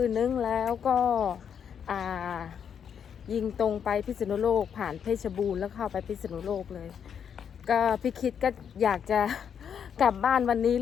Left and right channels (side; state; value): right; quieter; 7.8 dB